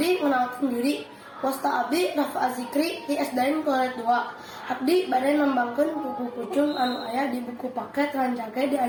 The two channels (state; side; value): identical; both; correlation 1.00